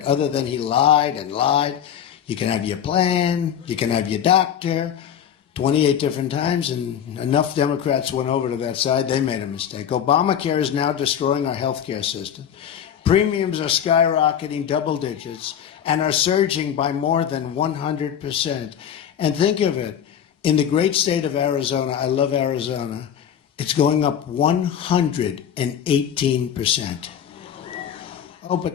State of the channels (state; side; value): quieter; right; 9.0 dB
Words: other than he lied and lied. You can have your plan, you can have your doctor, 28 different times, and enough Democrats went over to that side, they made a mistake. Obamacare is now destroying our health care system. Premiums are skyrocketing double digits and are surging by more than 100%. And think of it, in the great state of Arizona, I love Arizona, it's going up 118%. Oh, but